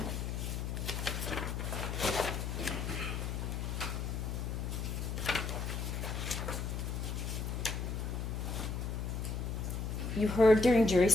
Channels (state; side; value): noise; left; hum, 2 dB below the sound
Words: You heard during jury